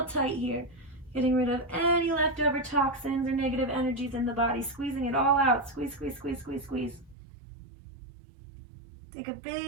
tight here. Getting rid of any leftover toxins or negative energies in the body. Squeezing it all out. Squeeze, squeeze, squeeze, squeeze, squeeze. Take a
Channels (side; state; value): left; drops out; at 7.2 s